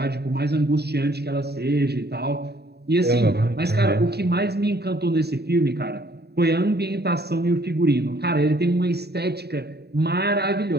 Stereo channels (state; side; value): late; left; 0.48 ms